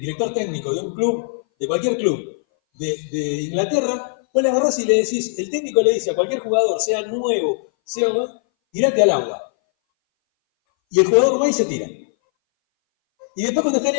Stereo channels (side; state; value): right; silent; 61 dB below the other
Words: técnico de un club, de cualquier club de Inglaterra, vos le agarrás y le decís, el técnico le dice a cualquier jugador, sea nuevo, sea tirate al agua. Y el jugador va y se tira. Y después cuando está en